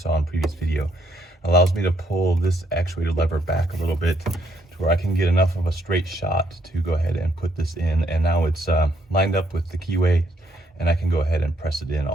in previous video. Allows me to pull this actuator lever back a little bit to where I can get enough of a straight shot to go ahead and put this in. And now it's lined up with the keyway, and I can go ahead and press it in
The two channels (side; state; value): both; normal; correlation 0.71